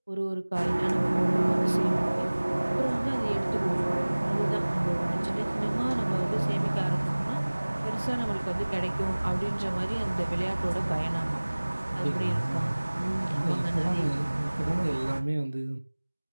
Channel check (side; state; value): both; inverted; correlation -1.00